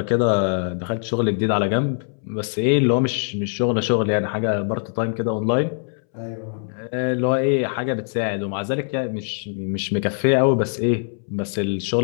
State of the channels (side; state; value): right; silent; 64 dB below the other